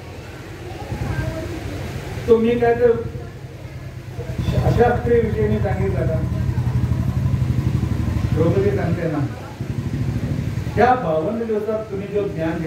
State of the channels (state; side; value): identical; both; correlation 1.00